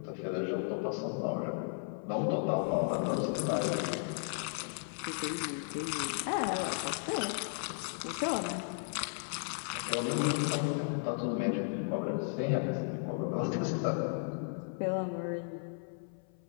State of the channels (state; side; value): silent; right; 54 dB below the other